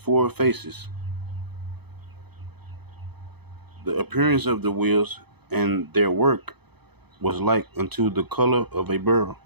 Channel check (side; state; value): left; late; 0.98 ms